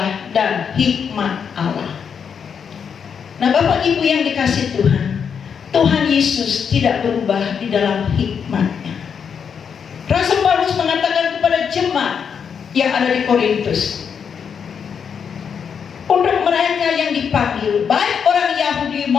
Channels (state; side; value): quieter; right; 7.0 dB